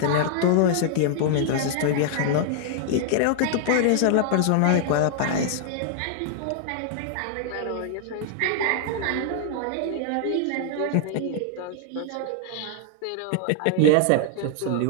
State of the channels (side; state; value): both; different; correlation 0.00